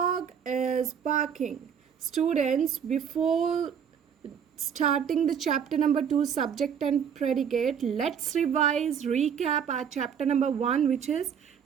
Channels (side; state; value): left; quieter; 7.8 dB